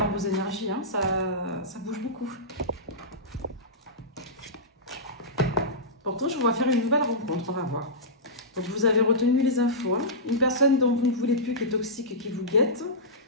vos énergies, hein. Ça bouge beaucoup. Pourtant, je vous vois faire une nouvelle rencontre, on va voir. Donc vous avez retenu les infos. Hein. Une personne dont vous ne voulez plus, qui est toxique et qui vous guette,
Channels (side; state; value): both; normal; correlation -0.16